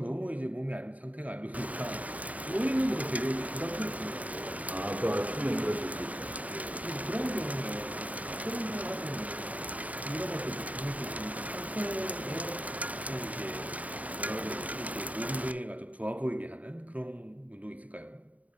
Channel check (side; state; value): left; late; 0.071 ms